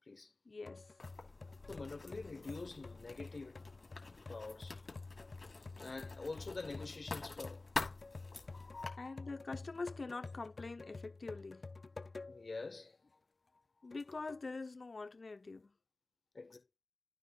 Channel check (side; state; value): right; quieter; 3.2 dB